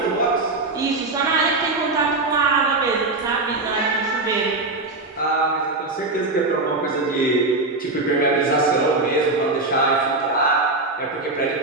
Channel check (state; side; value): quieter; left; 3.2 dB